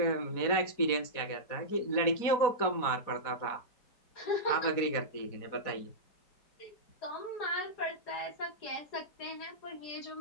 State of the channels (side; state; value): right; late; 4.2 ms